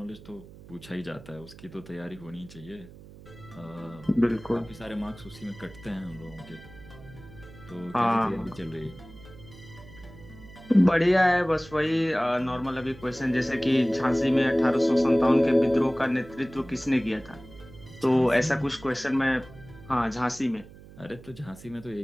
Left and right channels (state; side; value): noise; right; hum, 19 dB below the sound